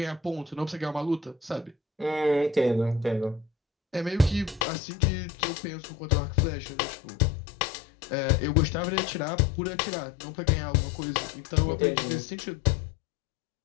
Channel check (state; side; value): drops out; right; at 4.7 s